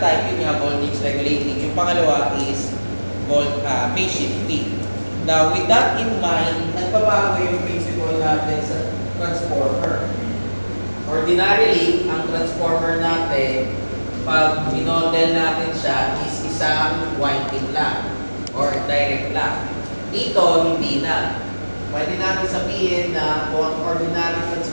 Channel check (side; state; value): both; inverted; correlation -1.00